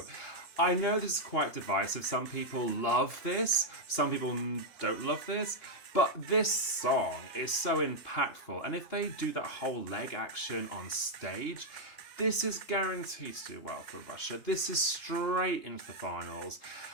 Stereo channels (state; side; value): late; right; 2.9 ms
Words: I know this is quite divisive. Some people love this, some people don't love this, but this song is so impactful, and if they do that whole leg action on stage, this is guaranteed to do well for Russia. This is straight into the finals.